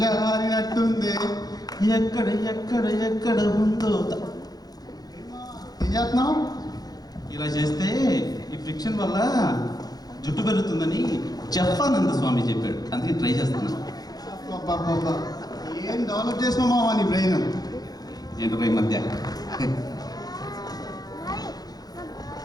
ఎక్కడ ఎక్కడ ఎక్కడ ఉందో ఏం చేస్తున్నావు? ఇలా చేస్తే ఈ ఫ్రిక్షన్ వల్ల జుట్టు పెరుగుతుందని జఫానంద స్వామి చెప్పాడు, అందుకే ట్రై చేస్తున్నాను. అబ్బబ్బబ్బా, ఏం డెవలప్ చేసినావు మావా నీ బ్రెయిన్? ఏంటో ఈ మధ్య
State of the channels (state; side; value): late; right; 0.19 ms